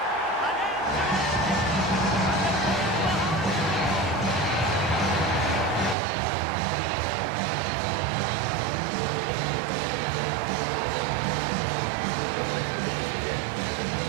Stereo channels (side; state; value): left; drops out; at 6.0 s